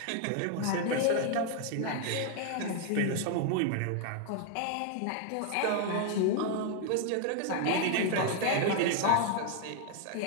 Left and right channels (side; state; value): both; different; correlation 0.00